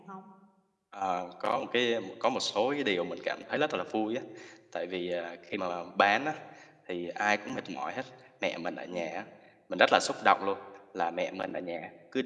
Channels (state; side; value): identical; both; correlation 1.00